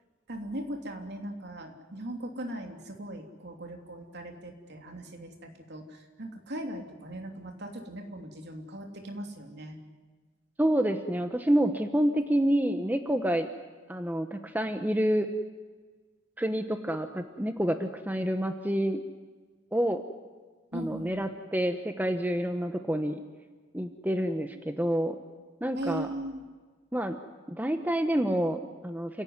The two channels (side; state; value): both; normal; correlation 0.88